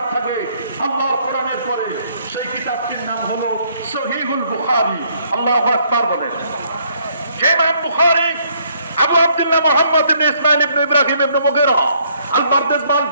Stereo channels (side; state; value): both; inverted; correlation -0.67